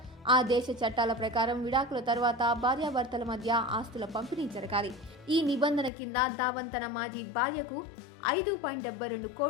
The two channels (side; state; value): right; drops out; at 5.9 s